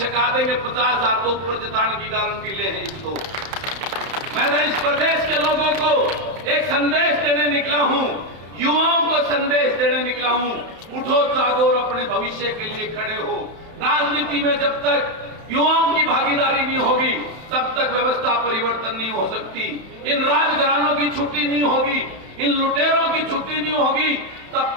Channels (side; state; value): left; late; 31 ms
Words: देंगे 50,000 तो ऊपर जिताने की गारंटी ले हैं इसको। मैं तो इस प्रदेश के लोगों को एक संदेश देने निकला हूं, युवाओं को संदेश देने निकला हूं, उठो जागो और अपने भविष्य के लिए खड़े हो। राजनीति में जब तक युवाओं की भागीदारी नहीं होगी, तब तक व्यवस्था परिवर्तन नहीं हो सकती। इन राजघरानों की छुट्टी नहीं होगी, इन लुटेरों की छुट्टी नहीं होगी, तब